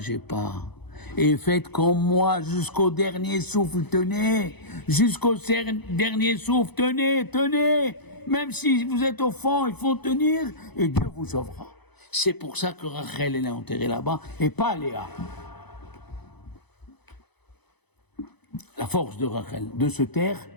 pas. Et faites comme moi jusqu'au dernier souffle, tenez. Jusqu'au dernier souffle, tenez. Même si vous êtes au fond, il faut tenir et Dieu vous sauvera. C'est pour ça que Rachel, elle est enterrée là-bas et pas Léa. La force de Rachel, de se taire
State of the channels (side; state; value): right; late; 0.99 ms